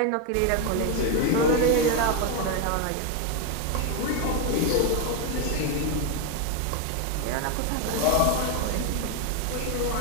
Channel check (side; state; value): both; different; correlation 0.02